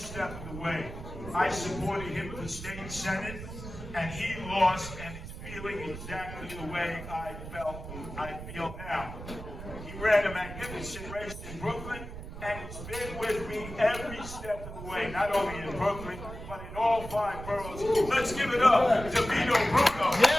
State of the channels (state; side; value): noise; right; rumble, 11 dB below the sound